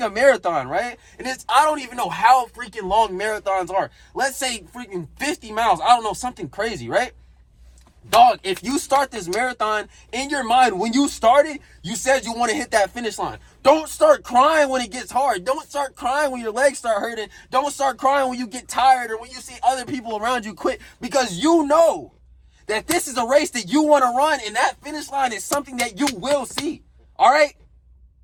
a marathon, right? And I don't even know how freaking long marathons are. Let's say freaking 50 miles. I don't know, something crazy, right? Dog, if you start this marathon in your mind, when you started, you said you want to hit that finish line. Don't start crying when it gets hard. Don't start crying when your legs start hurting. Don't start crying when you get tired or when you see other people around you quit, because you know that this is a race that you want to run, and that finish line is something that you will see. All right?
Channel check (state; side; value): identical; both; correlation 1.00